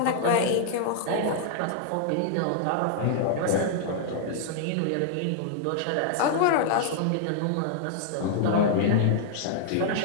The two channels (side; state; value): both; different; correlation -0.01